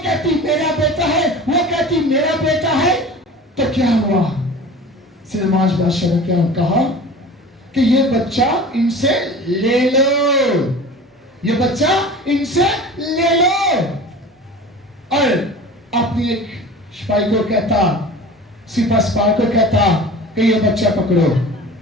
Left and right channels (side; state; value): both; normal; correlation 0.38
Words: کہتی میرا بیٹا ہے، وہ کہتی میرا بیٹا ہے۔ تو کیا ہوا، سلیمان بادشاہ نے کیا کہا کہ یہ بچہ ان سے لے لو، یہ بچہ ان سے لے لو، اور اپنی ایک سپاہی کو کہتا، سپاہ سالار کو کہتا کہ یہ بچہ پکڑو،